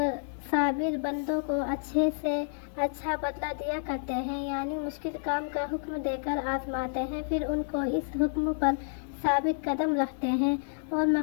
صابر بندوں کو اچھے سے اچھا بدلہ دیا کرتے ہیں، یعنی مشکل کام کا حکم دے کر آزماتے ہیں، پھر ان کو اس حکم پر ثابت قدم رکھتے ہیں اور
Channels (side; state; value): right; silent; digital silence